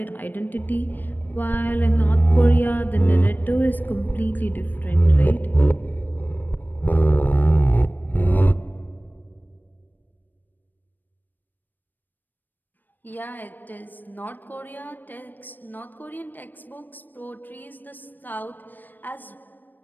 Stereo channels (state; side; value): late; right; 0.090 ms